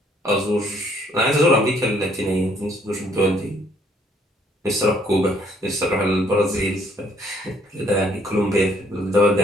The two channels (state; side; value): normal; both; correlation 0.65